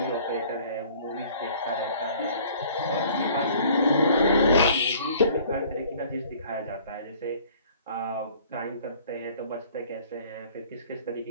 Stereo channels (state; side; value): inverted; both; correlation -0.53